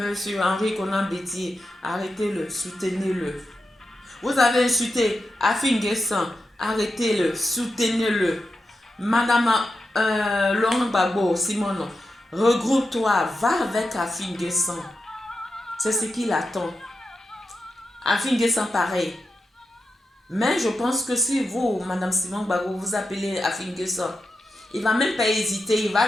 Henri Conan Bétier, arrêtez-le, soutenez-le. Vous avez insulté Afin Guessan, arrêtez-le, soutenez-le. Madame Laurent Gbagbo, Simone, regroupe-toi, va avec Afin Guessan. C'est ce qu'il attend. Afin Guessan, pareil. Mais je pense que si vous, Madame Simone Gbagbo, vous appelez Afin Guessan, il ne va même pas hésiter, il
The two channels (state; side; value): normal; both; correlation 0.89